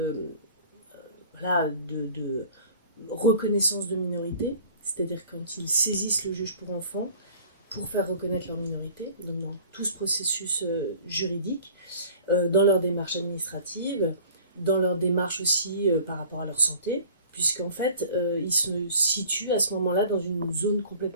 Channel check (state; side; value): inverted; both; correlation -0.48